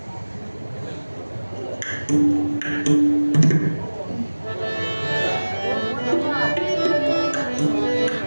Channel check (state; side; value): inverted; both; correlation -1.00